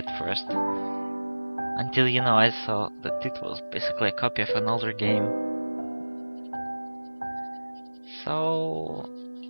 first. Until, I saw that it was basically a copy of an older game. So,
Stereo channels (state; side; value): inverted; both; correlation -1.00